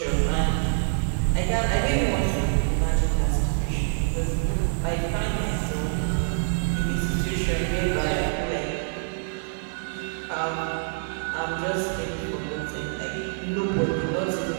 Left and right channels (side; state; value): left; silent; digital silence